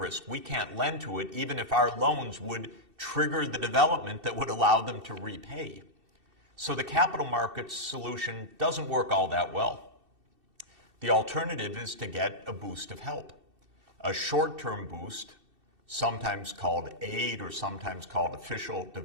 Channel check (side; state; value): left; late; 2.7 ms